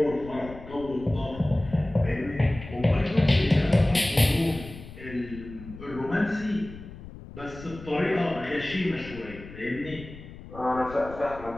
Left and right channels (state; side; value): noise; left; rumble, 15 dB below the sound